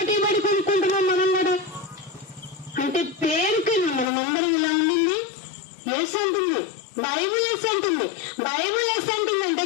పడి కొనుక్కుంటున్నాం మనం కూడా. అంటే పేరుకైనా మనం అందరం ఇలా ఉండింది. ఎస్ అంటుంది బైబుల్, ఎస్ అంటుంది బైబుల్. ఎస్ అంటుంది అంటే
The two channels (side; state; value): right; drops out; at 4.1 s